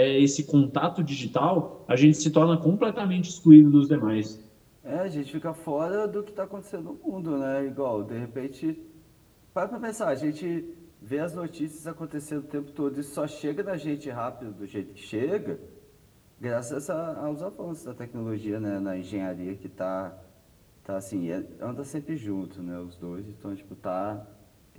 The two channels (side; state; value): both; identical; correlation 1.00